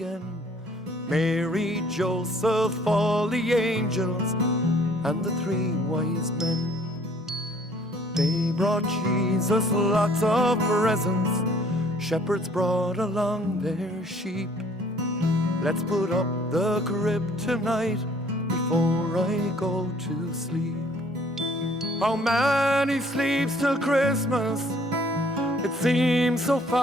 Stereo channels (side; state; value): both; normal; correlation 0.58